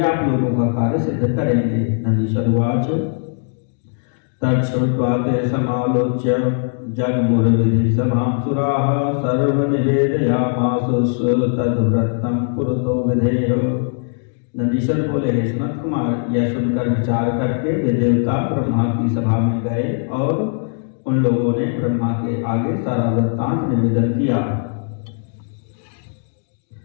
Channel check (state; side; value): silent; right; 66 dB below the other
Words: आप लोगों का कार्य सिद्ध करेंगे। नंदीश्वरवाच तच्छ्रुत्वा ते समालोच्य जगमुर्विधि सभां सुराः सर्वनिवेदयामासुः तद्व्रतं पुरतो विधेय। नंदीश्वर बोले, हे सनत कुमार, यह सुनकर विचार करके वे देवता ब्रह्मा की सभा में गए और उन लोगों ने ब्रह्मा के आगे सारा वृत्तांत निवेदन किया।